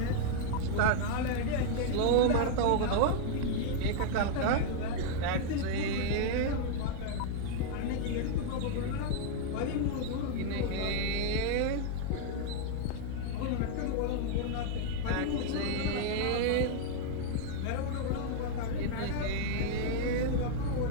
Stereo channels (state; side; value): different; both; correlation 0.00